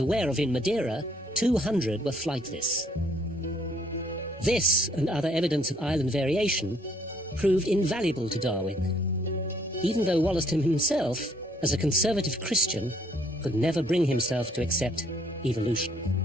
aware of in Madeira, 200 were flightless. This, and other evidence of island variation, proved invaluable to Darwin, even though Wollaston himself, as a conservative Christian, could never bring himself to accept evolution.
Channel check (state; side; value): normal; both; correlation 0.65